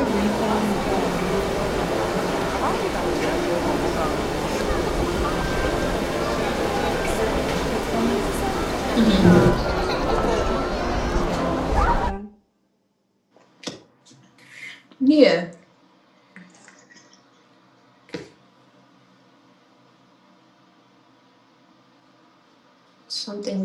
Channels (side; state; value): both; identical; correlation 1.00